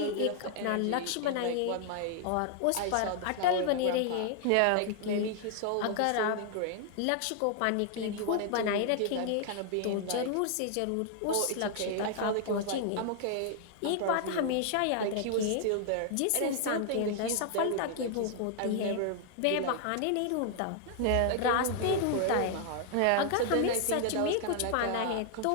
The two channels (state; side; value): different; both; correlation 0.00